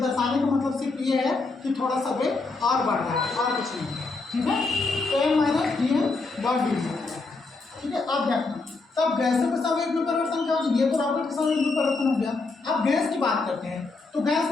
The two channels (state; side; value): quieter; right; 3.7 dB